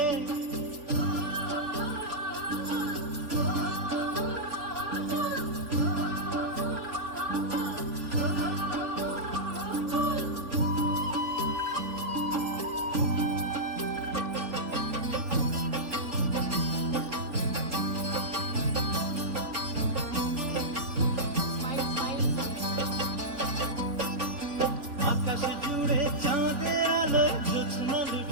আকাশ জুড়ে চাঁদের আলোয় জ্যোৎস্না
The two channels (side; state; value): left; late; 3.6 ms